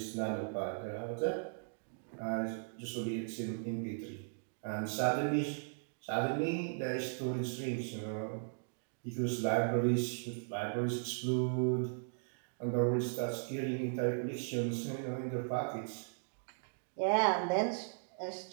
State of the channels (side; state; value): left; silent; digital silence